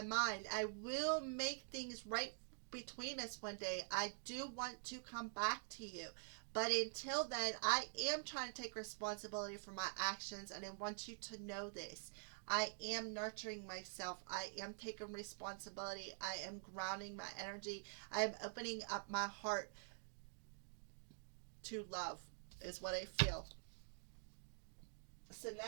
mind. I will make things right between us one day. I do want to come back to you. But until then, I am trying to take responsibility for my actions, and I want you to know this. I am nurturing myself. I am taking responsibility. I am grounding my energy. I am opening up my heart to love, is what I feel. So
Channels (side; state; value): left; silent; digital silence